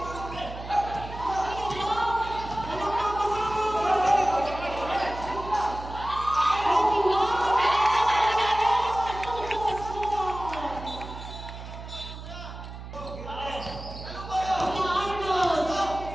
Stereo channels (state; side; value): noise; right; hum, 11 dB below the sound